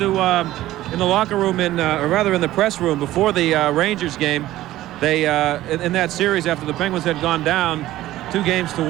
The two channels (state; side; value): quieter; left; 15.1 dB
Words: in the locker room, or rather in the press room before the Rangers game, they in that series after the Penguins had gone down